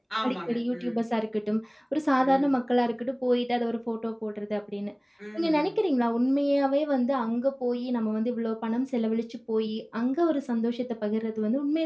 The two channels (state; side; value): identical; both; correlation 1.00